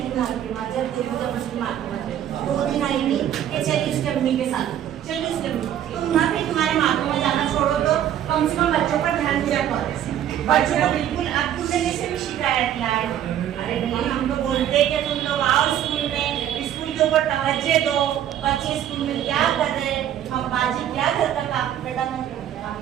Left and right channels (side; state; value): left; quieter; 10.7 dB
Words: दो दिन आएंगी कि चलिए उसके अम्मी के साथ चलिए उसके अम्मी तुम ना फिर तुम्हारे माता में जाना छोड़ो तो कम से कम बच्चों पर ध्यान दिया करो। बच्चों को बिल्कुल अब तुमने से भी शिकायत लाए। अरे भाई हम तो बोलते कि तुम लोग आओ स्कूल में स्कूल के ऊपर तवज्जो दो बच्चे स्कूल में क्या कर रहे हम बाजी क्या घर का काम बेटा मैं काम